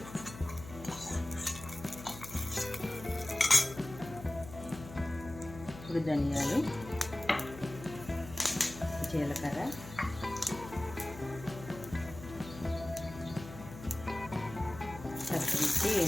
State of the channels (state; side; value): noise; left; hum, 14 dB below the sound